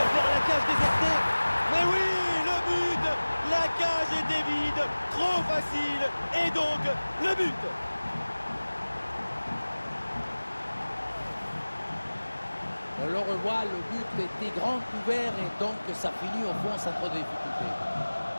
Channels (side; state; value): both; inverted; correlation -1.00